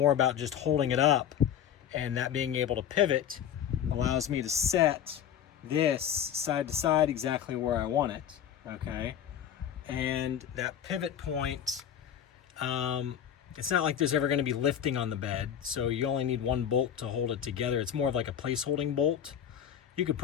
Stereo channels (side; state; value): right; quieter; 9.3 dB